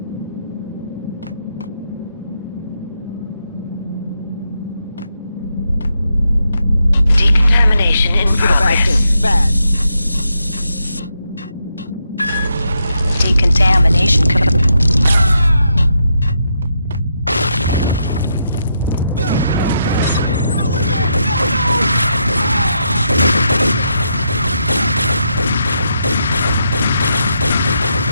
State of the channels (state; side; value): inverted; both; correlation -0.81